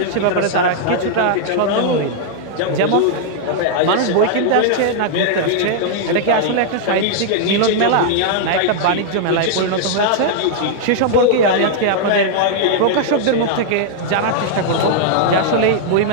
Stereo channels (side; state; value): both; different; correlation -0.01